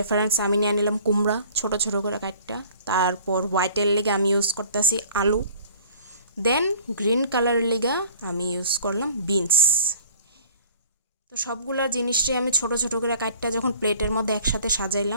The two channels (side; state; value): both; inverted; correlation -0.51